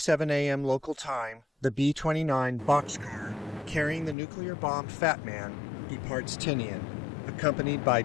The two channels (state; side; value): drops out; right; at 4.2 s